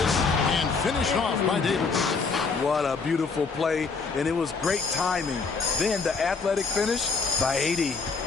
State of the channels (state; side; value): quieter; right; 4.7 dB